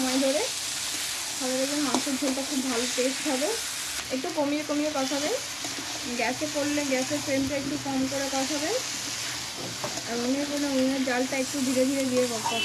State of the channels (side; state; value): both; identical; correlation 1.00